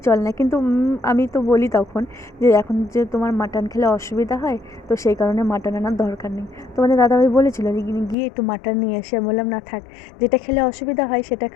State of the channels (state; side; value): drops out; right; at 8.2 s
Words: চলে না। কিন্তু আমি তো বলি তখন যে এখন যে তোমার মাটন খেলে অসুবিধা হয়, তো সেই কারণে মাটন আনার দরকার নেই। তোমাদের দাদাভাই বলেছিল যে গিয়ে একটু মাটন নিয়ে এসে, বললাম না থাক, যেটা খেলে অসুবিধা হয় সেটা